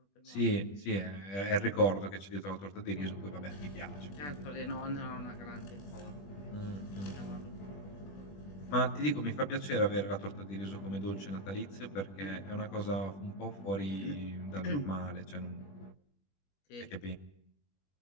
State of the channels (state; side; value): late; right; 20 ms